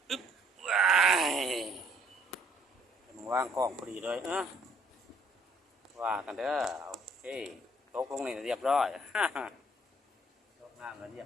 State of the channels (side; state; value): both; normal; correlation 0.62